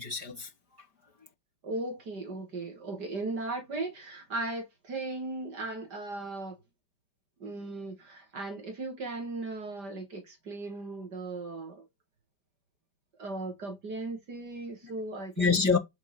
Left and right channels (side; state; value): left; late; 5.1 ms